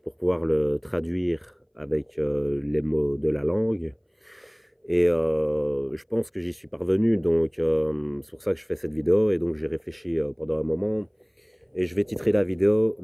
pour pouvoir le traduire avec les mots de la langue. Et je pense que j'y suis parvenu, donc c'est pour ça que je fais cette vidéo. Et donc j'ai réfléchi pendant un moment. Et je vais titrer la vidéo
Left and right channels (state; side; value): identical; both; correlation 1.00